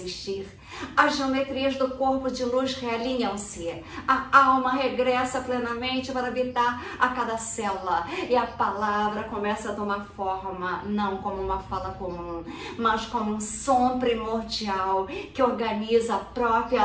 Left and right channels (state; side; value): identical; both; correlation 1.00